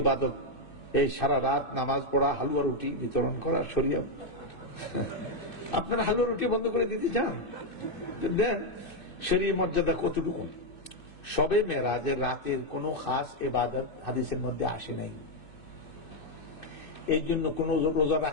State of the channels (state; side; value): late; right; 2.6 ms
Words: ইবাদত এই সারা রাত নামাজ পড়া, হালুয়া রুটি বিতরণ করা শরিয়া। আপনারা হালুয়া রুটি বন্ধ করে দিতে চান? দেন। শরীয়ত মর্যাদা কতটুকু? শবে মেরাজের রাতের কোনো খাস ইবাদত হাদিসের মধ্যে আসে নাই। এই জন্য কোন রোজা